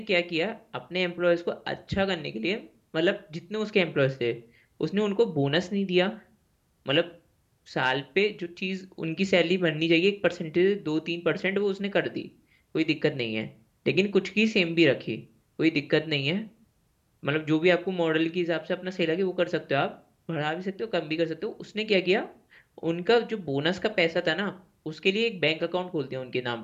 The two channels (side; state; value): both; identical; correlation 1.00